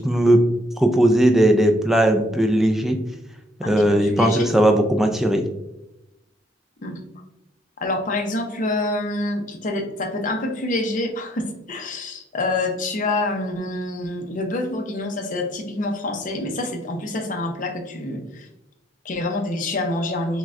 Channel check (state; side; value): normal; both; correlation 0.69